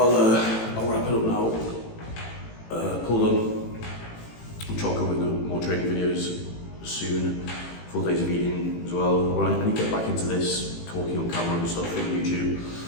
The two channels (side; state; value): right; late; 18 ms